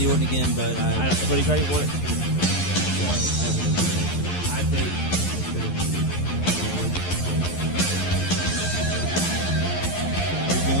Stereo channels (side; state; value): right; late; 11 ms